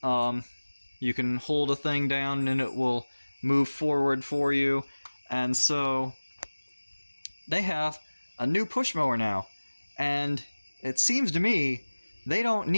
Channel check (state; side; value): inverted; both; correlation -1.00